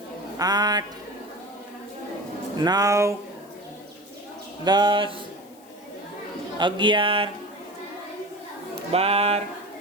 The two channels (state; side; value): noise; left; hiss, 26 dB below the sound